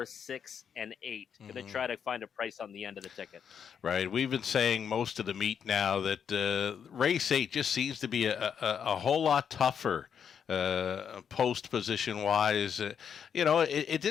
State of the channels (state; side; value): quieter; right; 7.6 dB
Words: 6, and 8. Going to try to find a price on the end of the ticket. Right. We've been saying most of the meet now that race 8 just seems to be a whole lot tougher post position wise. It